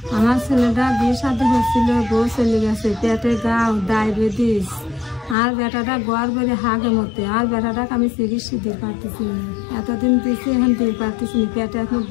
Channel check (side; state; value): right; drops out; at 5.4 s